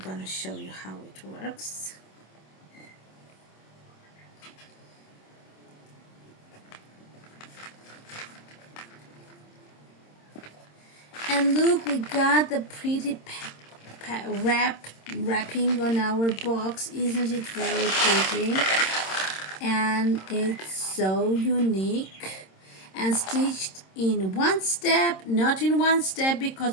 show you how it works. And look, we got the pretty wrapping on our box. Isn't it very pretty? And it's so unique and stitched in one step, not in one step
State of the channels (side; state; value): right; late; 26 ms